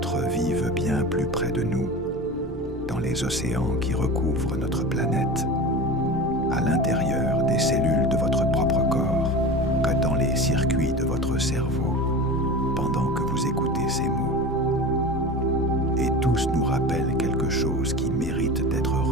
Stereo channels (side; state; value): both; normal; correlation 0.31